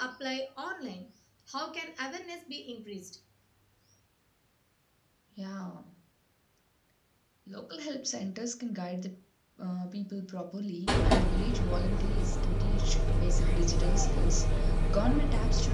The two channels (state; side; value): identical; both; correlation 1.00